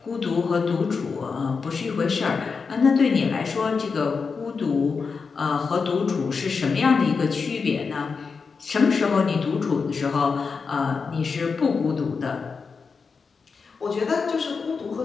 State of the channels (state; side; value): quieter; right; 5.1 dB